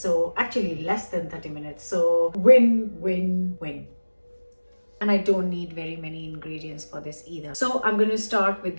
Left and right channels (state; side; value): inverted; both; correlation -1.00